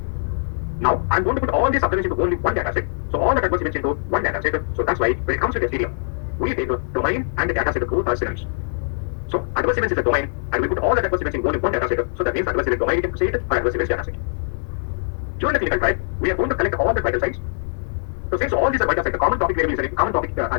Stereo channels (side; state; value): right; silent; digital silence